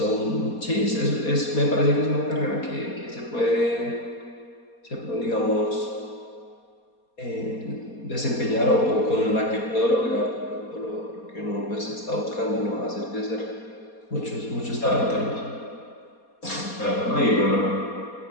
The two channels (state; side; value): late; right; 4.2 ms